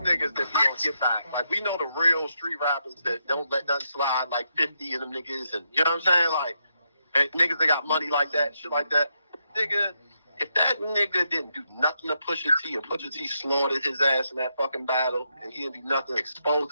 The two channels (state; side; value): inverted; both; correlation -0.82